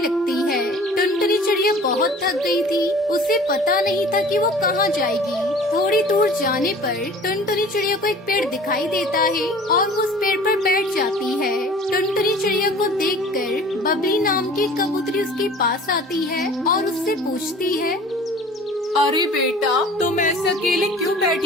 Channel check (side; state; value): both; normal; correlation 0.45